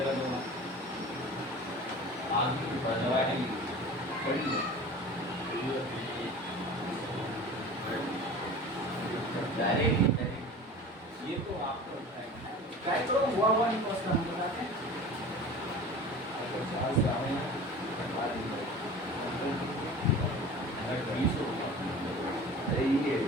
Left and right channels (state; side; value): normal; both; correlation 0.38